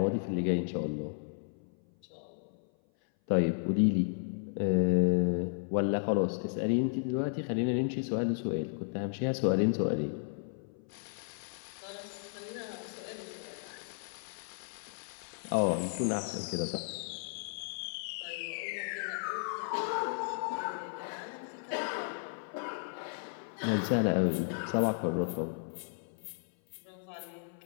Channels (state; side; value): silent; right; 55 dB below the other